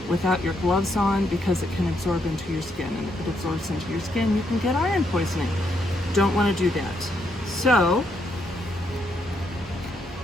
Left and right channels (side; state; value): both; normal; correlation 0.76